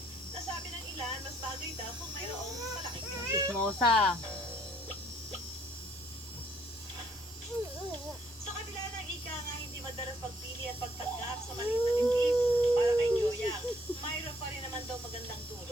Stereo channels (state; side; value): normal; both; correlation 0.66